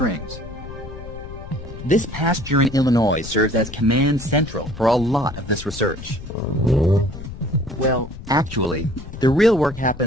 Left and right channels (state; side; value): noise; left; rumble, 12 dB below the sound